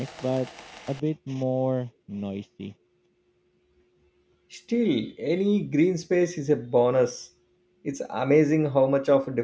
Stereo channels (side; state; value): both; identical; correlation 1.00